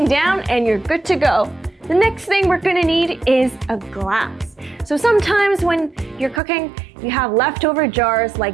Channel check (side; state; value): left; drops out; at 6.4 s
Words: down and you're good to go. The next thing we're gonna need is a glass. So sometimes when you're cooking, you have leftover jars